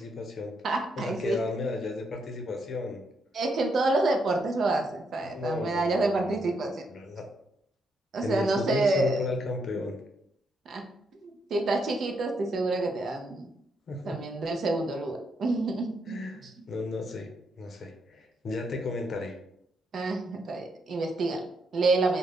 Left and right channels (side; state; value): both; normal; correlation 0.78